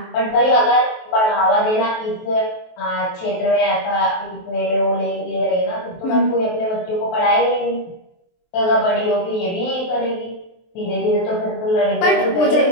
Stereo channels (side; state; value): right; late; 23 ms